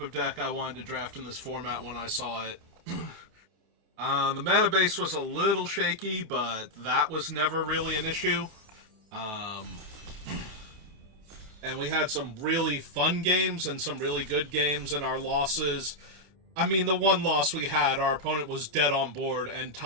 of deck I wanted to draft in this format when I saw it. The mana base was a little shaky, but that was never really an issue. And we had some really fun games and some really good games in our losses. I mean, the one loss we had, our opponent was dead on board and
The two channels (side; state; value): left; late; 28 ms